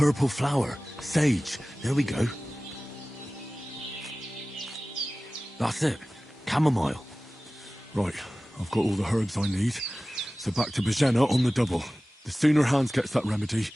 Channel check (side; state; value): both; normal; correlation 0.97